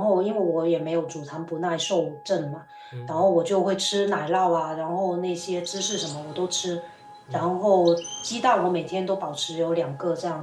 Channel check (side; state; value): both; identical; correlation 1.00